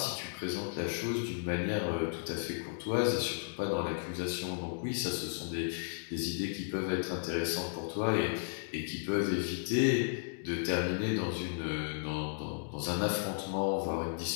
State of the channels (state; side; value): silent; right; digital silence